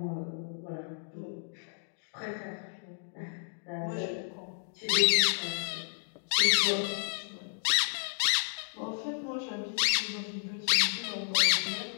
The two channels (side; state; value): right; silent; digital silence